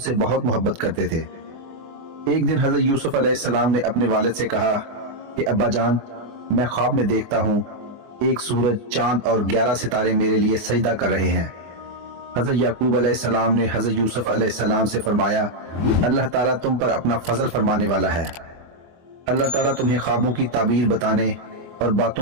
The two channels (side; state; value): left; late; 24 ms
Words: بہت محبت کرتے تھے. ایک دن حضرت یوسف علیہ السلام نے اپنے والد سے کہا کہ ابا جان، میں خواب میں دیکھتا ہوں ایک سورج، چاند اور 11 ستارے میرے لیے سجدہ کر رہے ہیں. حضرت یعقوب علیہ السلام نے حضرت یوسف علیہ السلام سے فرمایا، اللہ تعالیٰ تم پر اپنا فضل فرمانے والا ہے. اللہ تعالیٰ تمہیں خوابوں کی تعبیر بتانے اور